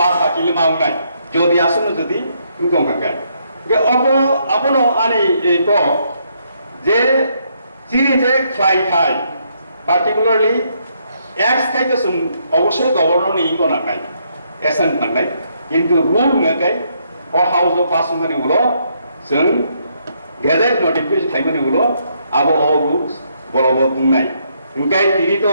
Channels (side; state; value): both; inverted; correlation -0.73